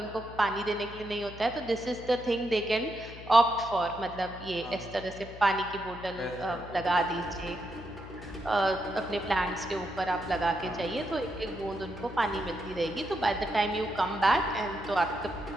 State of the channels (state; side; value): noise; left; hum, 15 dB below the sound